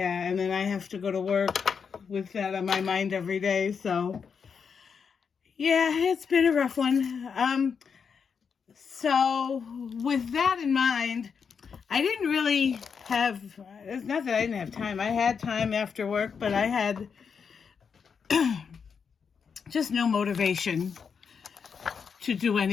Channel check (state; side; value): quieter; right; 6.3 dB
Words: and then I have to go to work with that on my mind every day, so yeah, it's been a rough one. So with that in mind, I didn't really have, it's not that I didn't have time. I had time after work, but I had just no motivation to do